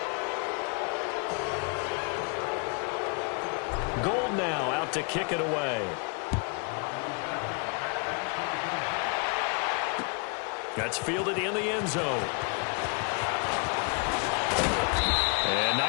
Gould now out to kick it away. That's fielded in the end zone. And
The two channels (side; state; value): right; quieter; 36.3 dB